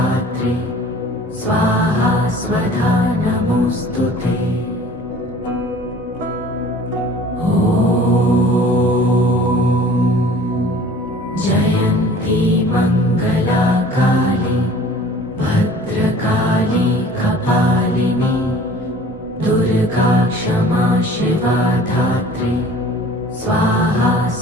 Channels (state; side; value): normal; both; correlation 0.47